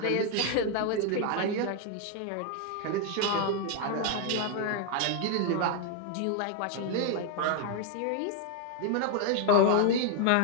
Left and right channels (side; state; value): both; different; correlation 0.00